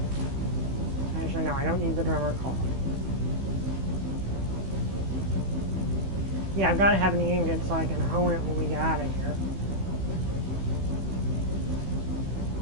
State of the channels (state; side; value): late; left; 15 ms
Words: Actually, no, I don't need the drummer card. Yeah, I've got to have an ingot so I can hone it when we get out of here.